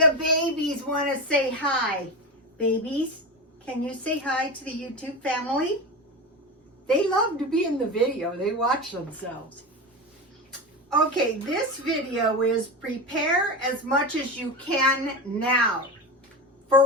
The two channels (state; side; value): normal; both; correlation 0.22